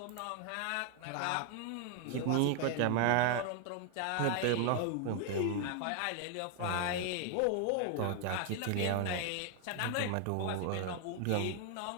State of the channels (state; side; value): different; both; correlation 0.00